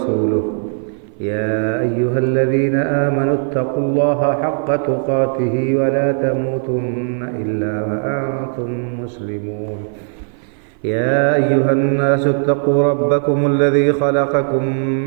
يا أيها الذين آمنوا اتقوا الله حق تقاته ولا تموتن إلا وأنتم مسلمون يا أيها الناس اتقوا ربكم الذي خلقكم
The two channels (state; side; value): silent; left; 57 dB below the other